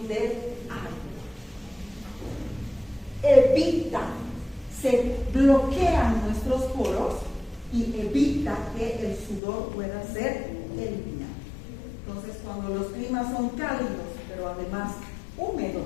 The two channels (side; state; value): right; drops out; at 9.4 s